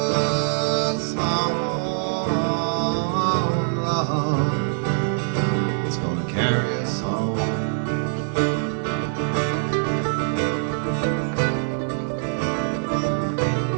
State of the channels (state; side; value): silent; left; digital silence